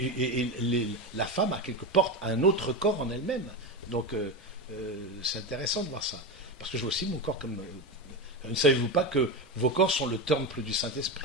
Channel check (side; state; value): both; normal; correlation 0.17